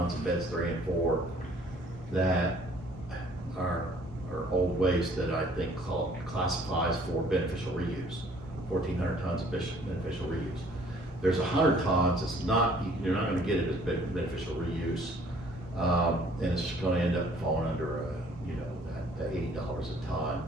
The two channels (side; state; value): both; normal; correlation 0.57